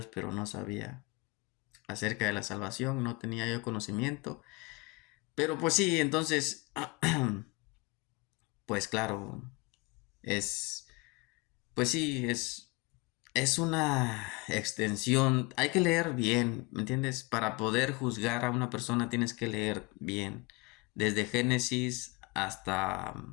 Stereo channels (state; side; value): quieter; right; 25.5 dB